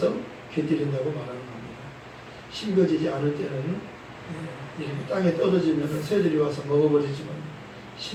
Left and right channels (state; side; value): identical; both; correlation 1.00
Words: 곁들인다고 말하는 겁니다. 심겨지지 않을 때는 이렇게 땅에 떨어지면 새들이 와서 먹어버리지만